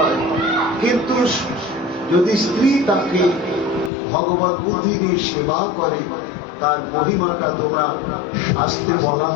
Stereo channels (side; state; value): right; drops out; at 3.9 s